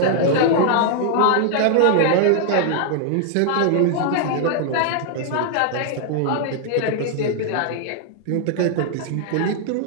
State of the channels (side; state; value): both; different; correlation 0.00